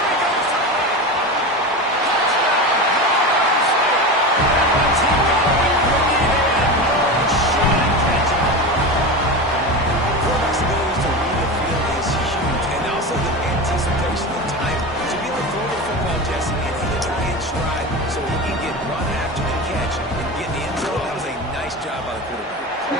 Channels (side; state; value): both; normal; correlation 0.24